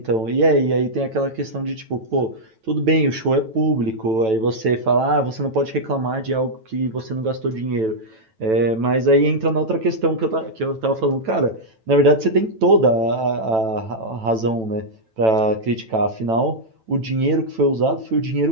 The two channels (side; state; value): left; late; 9.1 ms